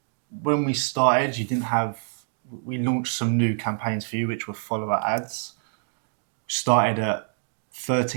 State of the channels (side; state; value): left; silent; digital silence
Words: when we started, you didn't have. We launched some new campaigns for you, which were follower ads. Started at